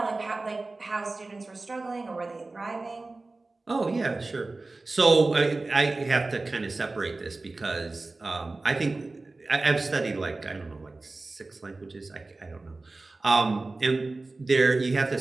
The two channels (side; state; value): left; quieter; 3.3 dB